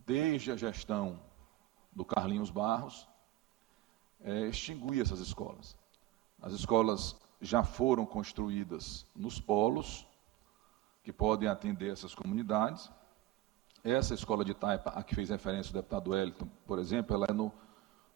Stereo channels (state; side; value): quieter; left; 15.8 dB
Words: desde a gestão do Carlinhos Barros, extinguir essas escolas. As escolas já foram construídas nos polos, que podem atender essas comunidades. Essa escola de Taipa, a que fez referência o deputado Wellington, por exemplo, ela é no